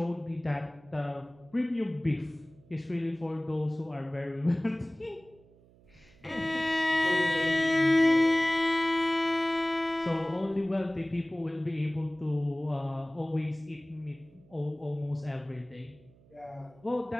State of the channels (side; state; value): right; noise; hum, 27 dB below the sound